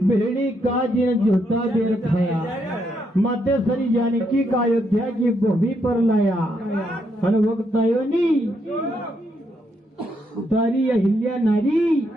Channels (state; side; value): normal; both; correlation 0.77